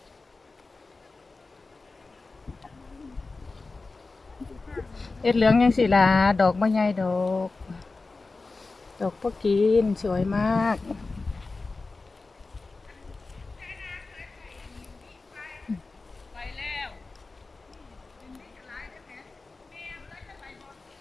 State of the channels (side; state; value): right; quieter; 3.7 dB